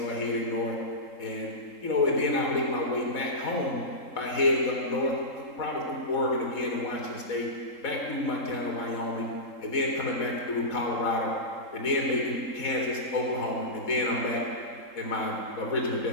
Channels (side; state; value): right; late; 3.8 ms